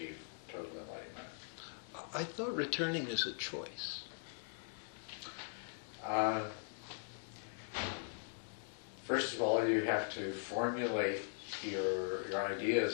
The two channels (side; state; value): right; silent; digital silence